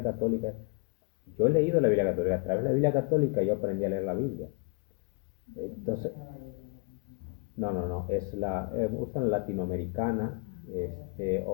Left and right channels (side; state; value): right; quieter; 34.5 dB